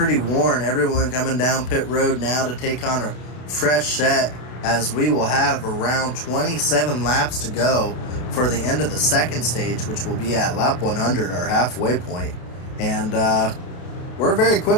worn. Everyone coming down pit road now to take on a fresh set as we will have around 27 laps to go for the end of the second stage, which will be at lap 100, our halfway point. And we're very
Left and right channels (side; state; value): right; late; 32 ms